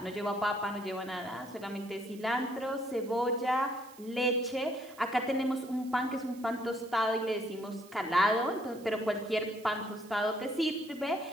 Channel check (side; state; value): right; noise; hiss, 22 dB below the sound